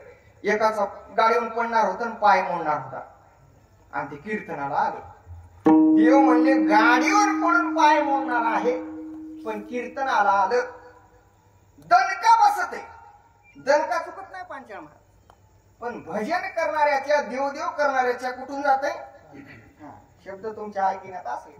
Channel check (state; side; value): identical; both; correlation 1.00